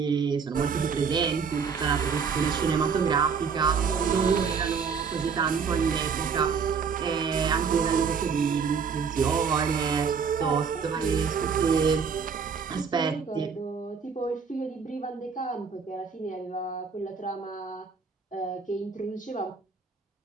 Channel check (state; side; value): quieter; left; 6.0 dB